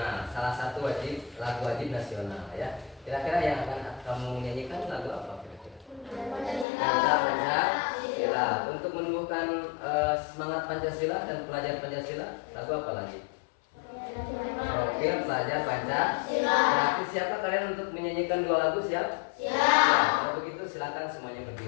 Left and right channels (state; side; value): drops out; right; at 6.7 s